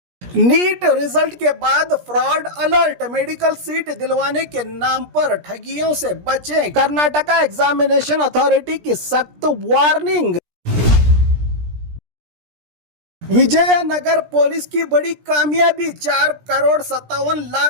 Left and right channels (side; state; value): left; late; 17 ms